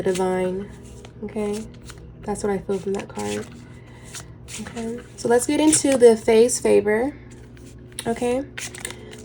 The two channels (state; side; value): identical; both; correlation 1.00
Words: divine. Okay? That's what I feel from that card. Okay. So let's get into the phase favor. Okay?